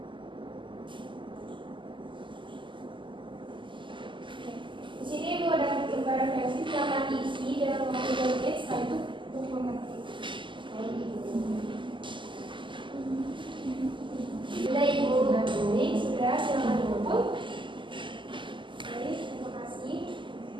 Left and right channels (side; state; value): left; late; 0.24 ms